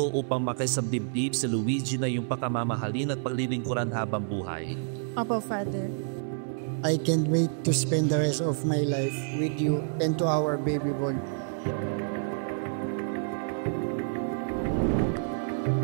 upang makisabdibdib si Luigi na iyong pakamamahalin at paglilingkuran habang buhay? Opo, Father. I can't wait to spend the rest of my life with you and to our baby boy.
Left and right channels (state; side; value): silent; left; 59 dB below the other